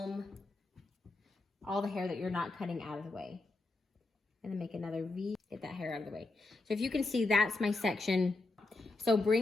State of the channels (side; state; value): right; quieter; 3.3 dB